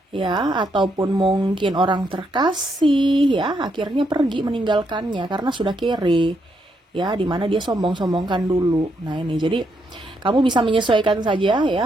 ya, ataupun mungkin orang terkasih ya, akhirnya pergi meninggalkannya karena sudah kere ya, dimana dia sombong-sombongkan dulu. Nah ini, jadi kamu bisa menyesuaikan saja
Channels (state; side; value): normal; both; correlation 0.78